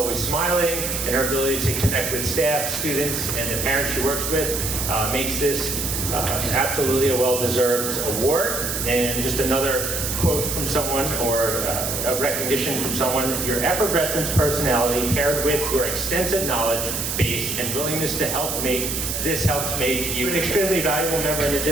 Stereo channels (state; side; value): noise; right; hiss, 2 dB below the sound